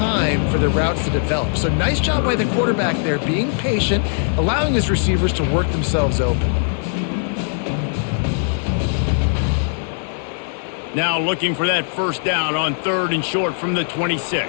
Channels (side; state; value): right; silent; digital silence